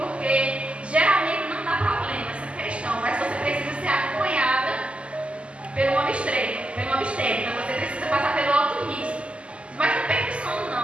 geralmente não dá problema essa questão, mas você precisa ser acompanhada pelo obstetra, você precisa passar pelo alto risco. Mas não perca o sono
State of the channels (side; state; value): left; late; 0.055 ms